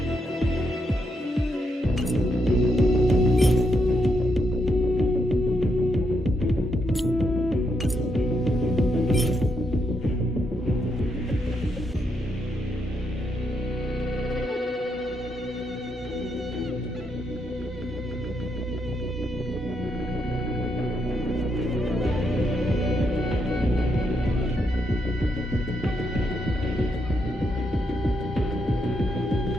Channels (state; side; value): normal; both; correlation 0.79